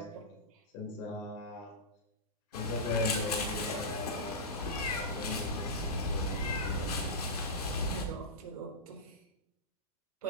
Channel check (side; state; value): both; normal; correlation -0.15